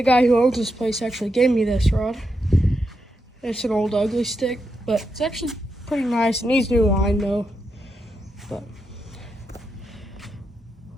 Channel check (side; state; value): both; normal; correlation 0.84